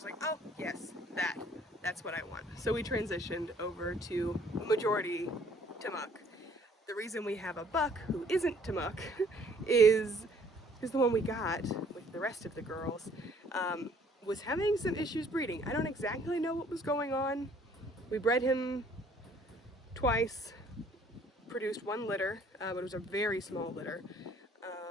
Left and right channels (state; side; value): normal; both; correlation 0.59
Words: like, oh yes, that's what I want. So we transitioned over to majority Tamuk. The reason we have a buck who isn't Tamuk is the one we got with the rest of the girls was having some issues breeding. I don't exactly know what was going on. We bred him twice, produced one litter, but it was a very small litter,